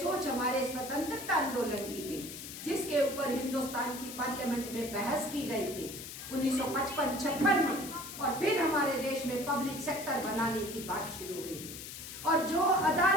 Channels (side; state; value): left; noise; hiss, 10 dB below the sound